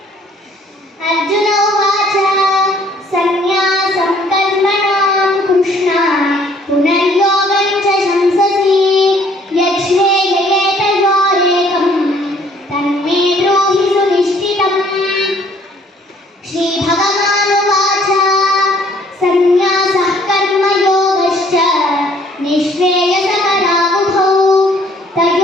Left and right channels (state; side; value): normal; both; correlation 0.60